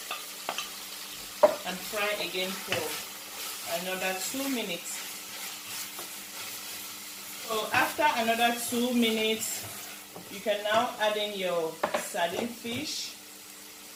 and fry again for another 2 minutes. So after another 2 minutes, you can now add in your sardine fish.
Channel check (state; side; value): identical; both; correlation 1.00